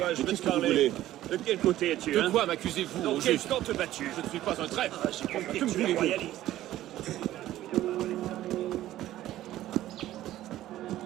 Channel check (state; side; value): quieter; left; 14.1 dB